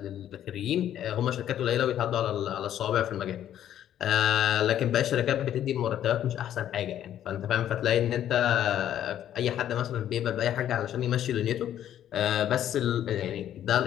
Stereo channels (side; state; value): right; quieter; 11.0 dB